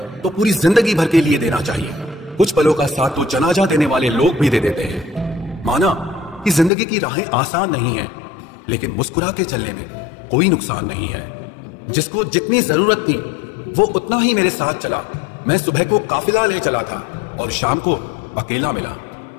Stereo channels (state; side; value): drops out; right; at 6.7 s